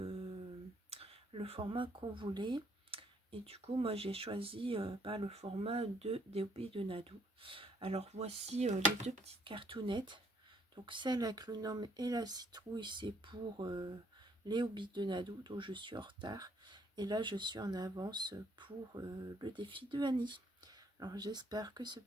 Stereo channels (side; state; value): both; normal; correlation 0.66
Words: format qu'on voulait. Et du coup, moi j'ai choisi le format des Hobbies de Nadou. Alors voici les deux petites cartounettes. Donc celle avec le nom et la citrouille, c'est pour les Hobbies de Nadou, dont je suis en retard. Et là, je suis en avance pour le défi de Annie. Alors j'espère que ce